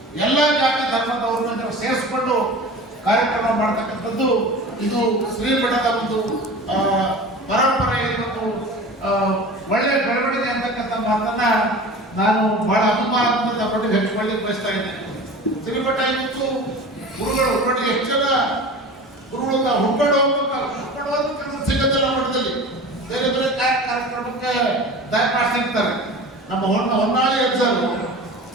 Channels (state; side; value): normal; both; correlation 0.36